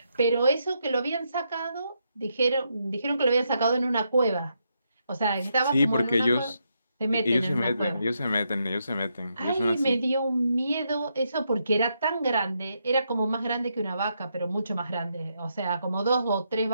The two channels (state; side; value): inverted; both; correlation -0.80